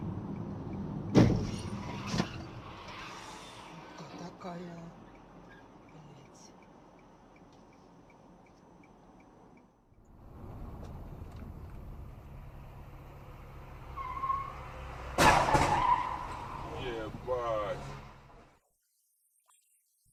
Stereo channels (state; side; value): identical; both; correlation 1.00